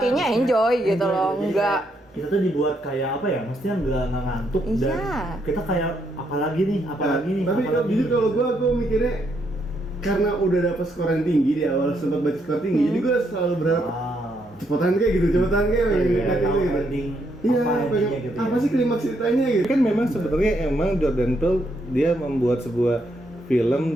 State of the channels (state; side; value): normal; both; correlation 0.76